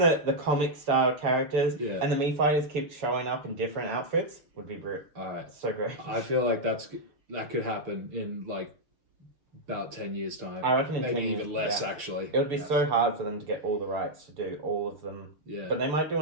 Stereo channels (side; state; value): left; late; 6.6 ms